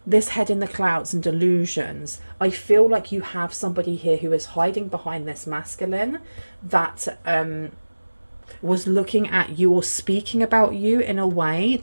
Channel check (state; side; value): inverted; both; correlation -1.00